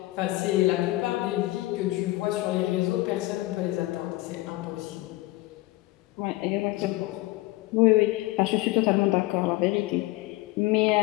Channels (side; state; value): right; quieter; 19.4 dB